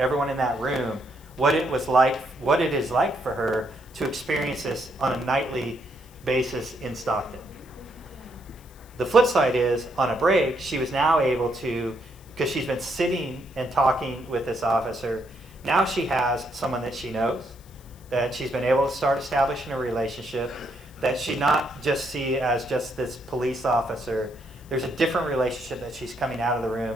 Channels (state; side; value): noise; left; hiss, 26 dB below the sound